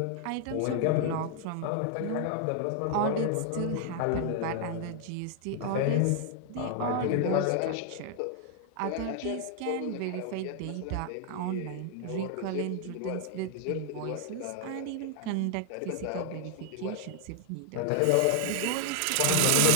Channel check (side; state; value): both; different; correlation 0.00